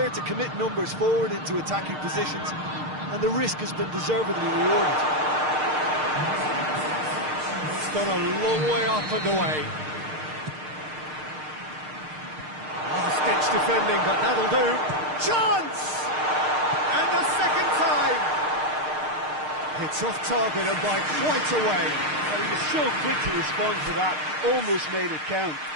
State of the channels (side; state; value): left; late; 6.5 ms